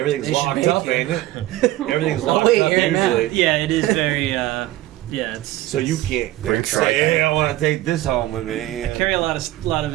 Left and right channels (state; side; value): quieter; left; 15.9 dB